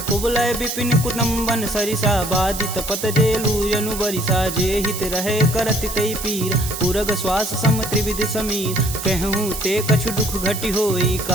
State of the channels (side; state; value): right; noise; hiss, 8 dB below the sound